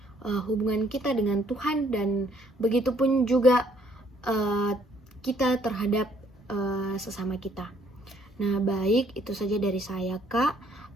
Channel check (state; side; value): normal; both; correlation 0.65